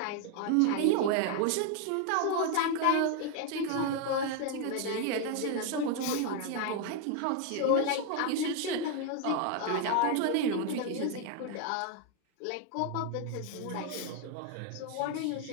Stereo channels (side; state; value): both; different; correlation 0.01